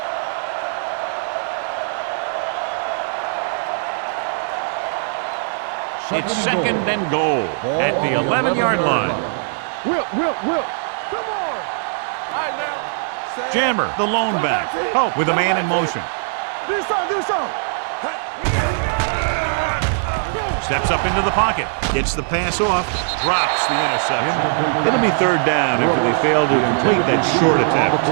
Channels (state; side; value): silent; left; digital silence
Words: It's second and goal at the 11-yard line. Whip. Come on. All right, now. Jammer, the lone back. Oh, with a man in motion. Do something. Steps up into the pocket. Gets the pass off. Drops the interception. It'll be third down after they fail to complete that short attempt.